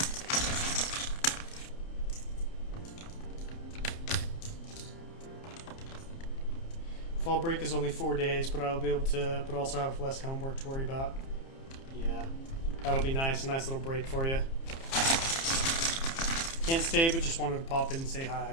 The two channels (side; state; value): right; late; 30 ms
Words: Fall break is only 4 days, but I'll be able to, but also have less homework to worry about. Yeah, that'll be nice. A nice little break for you. Can't stay, but just wanted to pop in and say hi. I